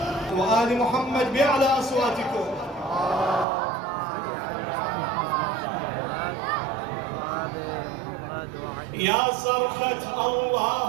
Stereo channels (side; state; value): left; drops out; at 3.5 s